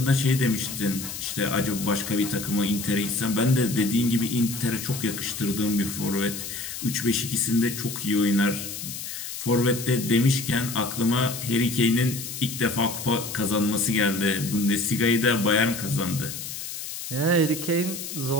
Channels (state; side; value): noise; left; hiss, 8 dB below the sound